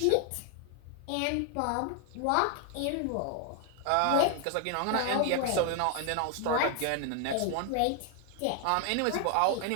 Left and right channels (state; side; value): different; both; correlation 0.00